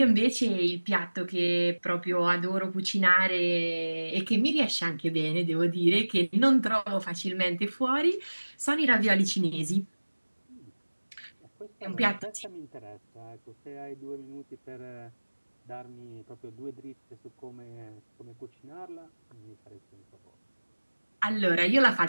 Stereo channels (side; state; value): both; inverted; correlation -1.00